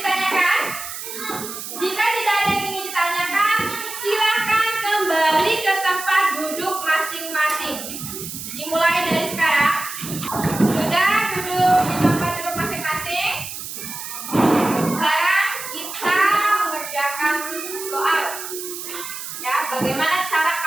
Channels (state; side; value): noise; right; hiss, 8 dB below the sound